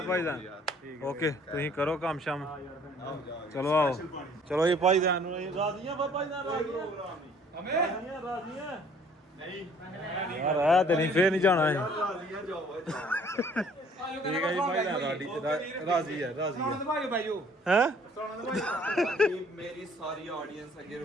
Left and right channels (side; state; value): both; normal; correlation 0.57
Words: ਭਾਈ ਜਾਨ ਓਕੇ ਤੁਸੀਂ ਕਰੋ ਕੰਮ ਸ਼ਾਮ ਚਲੋ ਆਓ ਚਲੋ ਇਹ ਭਾਈ ਜਾਨ ਨੂੰ ਰਾਜ਼ੀਆਂ ਭਾਈ ਜਾਨ ਰਾਜ਼ੀਆਂ ਰਾਜ਼ੀਆਂ ਨਹੀਂ ਯਾਰ ਆ ਤੇ ਨਹੀਂ ਫੇਰ ਨਹੀਂ ਜਾਣਾ ਹੈ ਰਾਜ਼ੀਆਂ ਜਾਓ ਠੀਕ ਹੈ ਜੀ ਭਾਈ ਜਾਨ ਰਾਜ਼ੀ ਹੈ ਸੁਣਾਉਣ ਦੇ ਭਾਈ ਭਾਈਓ ਹੈ ਸੁਣਾਉਣ ਦੇ ਭਾਈ ਮੇਰੀ ਸਾਰੀ ਆਡੀਅנס ਅੱਗੇ